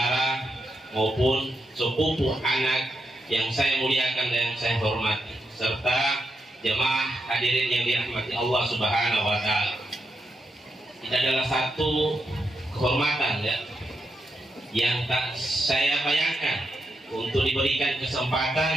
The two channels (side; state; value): both; normal; correlation 0.84